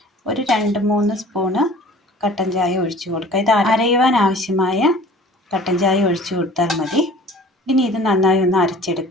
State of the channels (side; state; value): both; normal; correlation 0.47